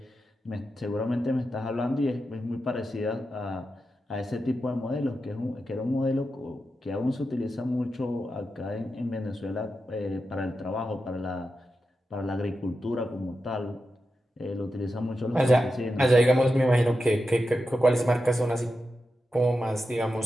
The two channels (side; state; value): both; normal; correlation 0.89